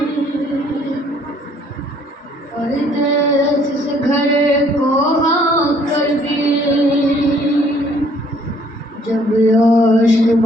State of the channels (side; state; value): both; normal; correlation 0.61